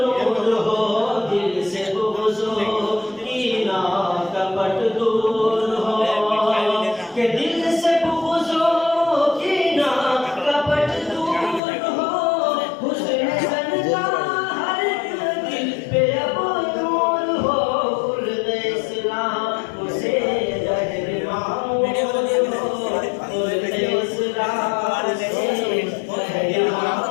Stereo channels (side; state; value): right; drops out; at 11.6 s